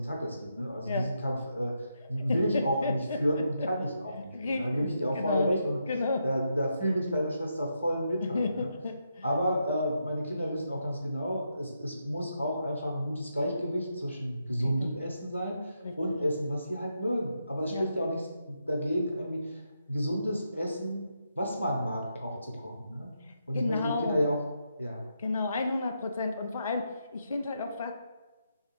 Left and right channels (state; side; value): inverted; both; correlation -0.82